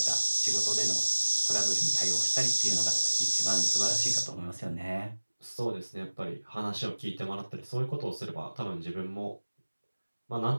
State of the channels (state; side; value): inverted; both; correlation -1.00